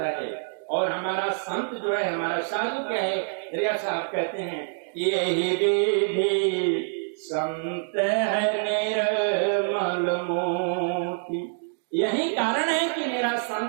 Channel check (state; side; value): silent; left; digital silence